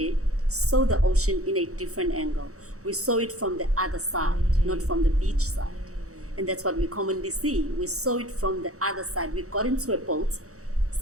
saw the ocean in a different angle. We saw it from the other side, not from the beach side. And that's what we commonly see. We saw it from the other side. We got into a boat,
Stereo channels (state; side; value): late; left; 0.65 ms